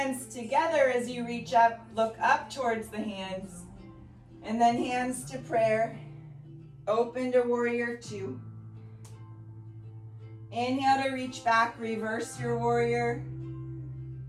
together as you reach up. Look up towards the hands. And then hands to prayer. Open to warrior two. Inhale to reach back. Reverse your warrior.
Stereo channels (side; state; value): both; identical; correlation 1.00